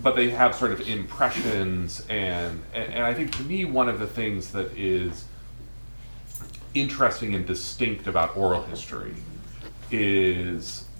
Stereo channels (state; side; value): inverted; both; correlation -1.00